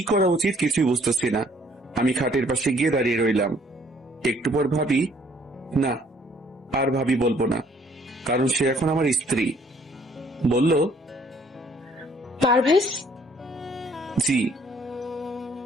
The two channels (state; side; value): normal; both; correlation 0.61